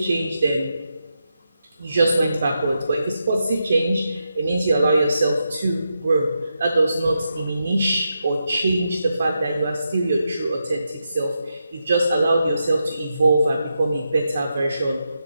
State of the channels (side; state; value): both; inverted; correlation -0.85